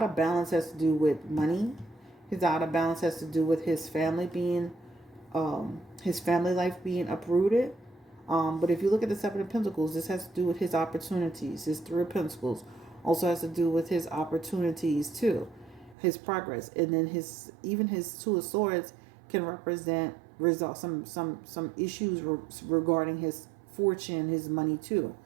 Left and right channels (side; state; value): left; drops out; at 16.0 s